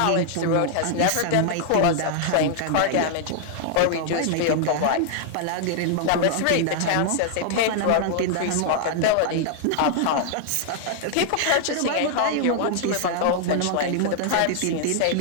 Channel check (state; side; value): different; both; correlation -0.01